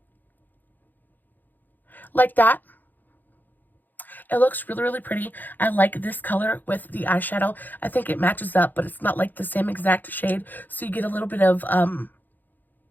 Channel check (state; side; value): late; right; 0.086 ms